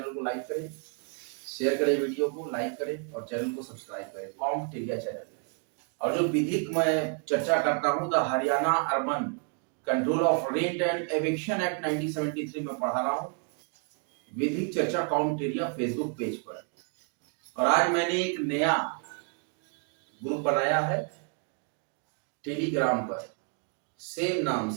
को लाइक करें, शेयर करें, वीडियो को लाइक करें और चैनल को सब्सक्राइब करें, कॉम्टेरिया चैनल। और जो विधिक मैं चर्चा करता हूँ, the Haryana urban control of rent and eviction act 1973 में पढ़ा रहा हूँ, विधिक चर्चा कॉम्टेरिया फेसबुक पेज पर। और आज मैंने एक नया ग्रुप बनाया है टेलीग्राम पर, सेम नाम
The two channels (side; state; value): left; quieter; 39.3 dB